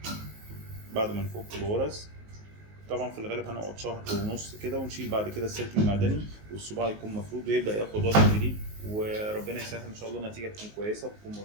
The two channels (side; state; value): left; late; 19 ms